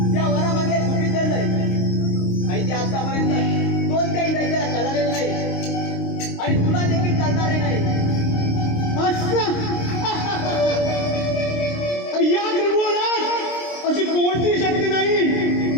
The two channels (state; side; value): late; right; 26 ms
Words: त्या वरामागे तुम्ही चाललंय आणि ते आतापर्यंत कोणत्याही दैत्याला कळालेलं नाही आणि तुला देखील चालणारे नाही. या त्रिभुवनात अशी कोणती शक्ती